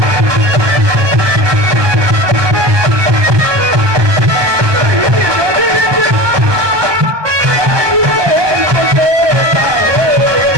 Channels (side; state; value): left; late; 1.2 ms